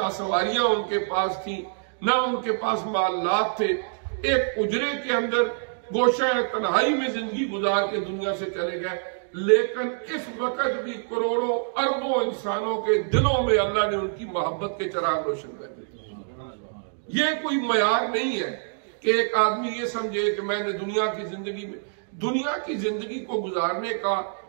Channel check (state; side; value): silent; left; digital silence